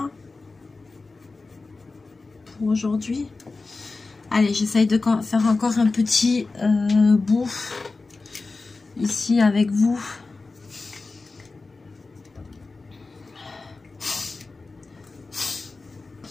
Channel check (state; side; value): quieter; right; 3.7 dB